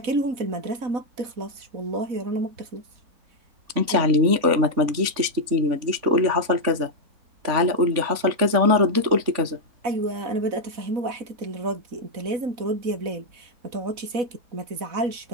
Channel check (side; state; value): left; late; 3.5 ms